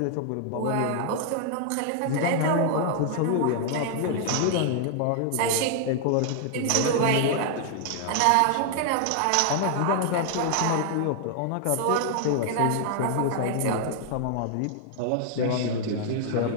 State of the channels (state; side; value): different; both; correlation 0.00